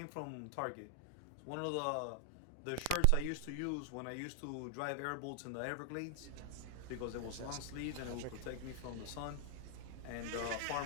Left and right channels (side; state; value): both; different; correlation 0.00